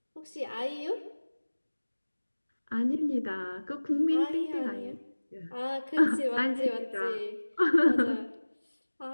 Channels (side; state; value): both; inverted; correlation -1.00